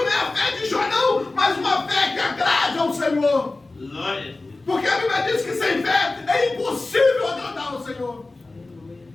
a fé de Jó, não, mas uma fé que agrade ao Senhor. Porque a Bíblia diz que sem fé é impossível agradar ao Senhor.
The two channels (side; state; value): right; quieter; 3.2 dB